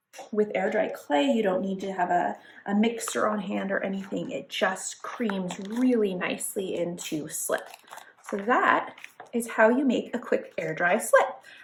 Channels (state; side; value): identical; both; correlation 1.00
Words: With air dry clay, you don't need to have a mixer on hand or anything. It just creams really nicely into slip. So that is how you make a quick air dry slip.